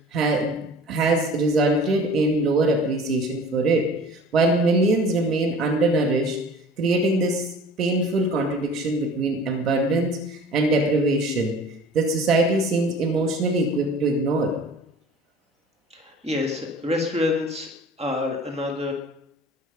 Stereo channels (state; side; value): normal; both; correlation 0.45